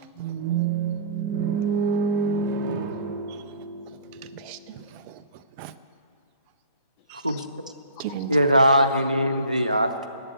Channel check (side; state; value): both; inverted; correlation -0.48